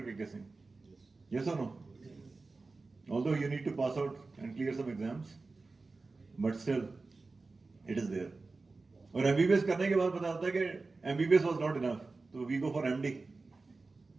KK Singh. Yes or no? Although you need to pass out and clear some exams, but still, it is there. और MBBS करने के बाद पता चलता है कि MBBS was not enough, so we go for MD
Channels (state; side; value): quieter; left; 3.7 dB